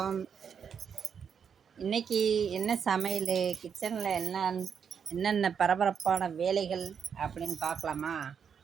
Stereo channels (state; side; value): quieter; left; 7.1 dB